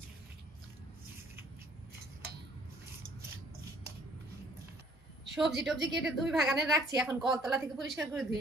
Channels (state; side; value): normal; both; correlation 0.58